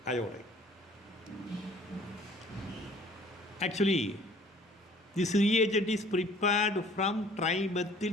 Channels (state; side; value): normal; both; correlation 0.54